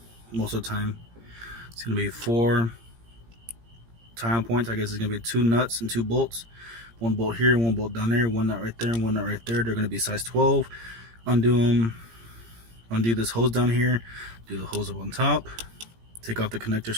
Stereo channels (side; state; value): left; late; 17 ms